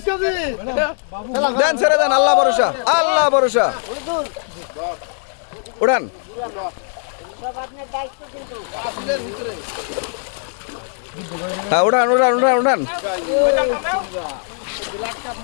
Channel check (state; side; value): silent; right; 62 dB below the other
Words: KG দেন ছেড়ে দেন, আল্লাহ ভরসা, আল্লাহ ভরসা। উড়ান, হ্যাঁ উড়ান উড়ান উড়ান উড়ান।